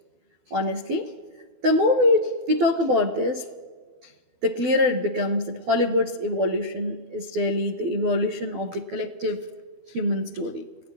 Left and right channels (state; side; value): late; left; 12 ms